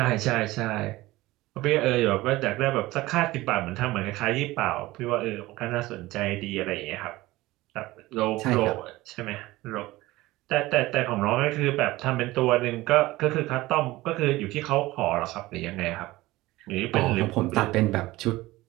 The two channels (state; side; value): quieter; left; 18.6 dB